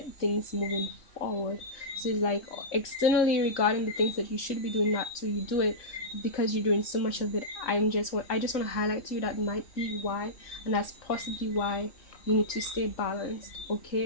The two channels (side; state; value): right; late; 3.1 ms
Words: things moving forward. So it's like, externally, regarding the things that you should be doing, not to you do it, because you're doing so much of it. I just want to highlight to you that might be why, and that's possibly why You need to stay balanced,